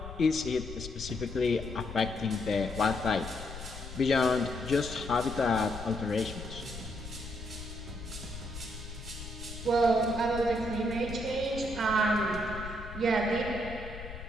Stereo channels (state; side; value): noise; left; rumble, 11 dB below the sound